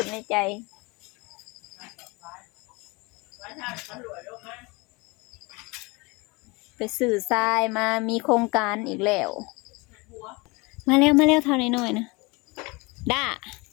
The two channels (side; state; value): right; quieter; 26.1 dB